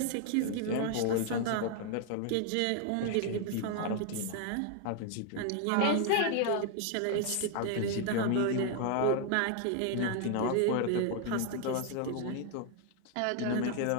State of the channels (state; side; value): different; both; correlation 0.00